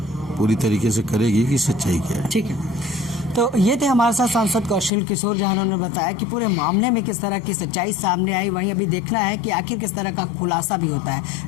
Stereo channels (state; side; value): drops out; right; at 4.9 s